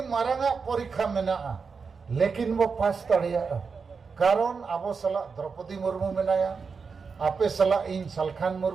मारंगा परीक्षा मेना लेकिन वो पास तड़िया कारण आबो सला द्रौपदी मुर्मू मेनाया आपे सला इन सलखान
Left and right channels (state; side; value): quieter; left; 5.3 dB